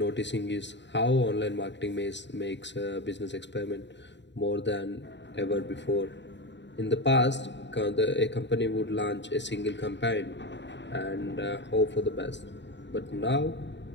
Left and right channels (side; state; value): right; late; 0.52 ms